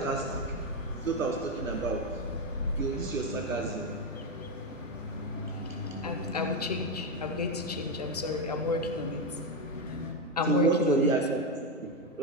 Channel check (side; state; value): both; normal; correlation 0.08